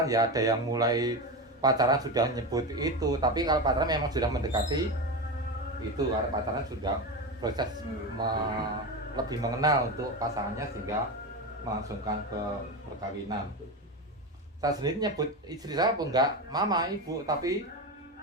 ya, ada yang mulai pacaran sudah nyebut itu, tapi kalau pacaran memang sudah mendekati itu, karena pacaran sudah proses lebih mengenal untuk pasangannya sehingga melangsungkan ke perkawinan. Saya sendiri nyebut istri saya pun enggak mama, ibu, tapi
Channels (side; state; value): both; normal; correlation 0.19